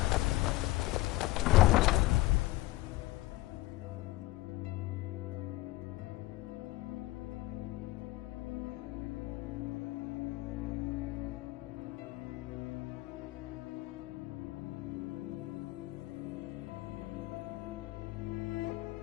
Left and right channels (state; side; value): quieter; right; 19.0 dB